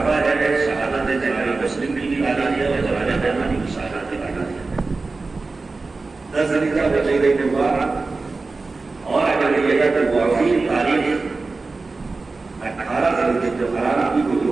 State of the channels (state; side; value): quieter; left; 3.8 dB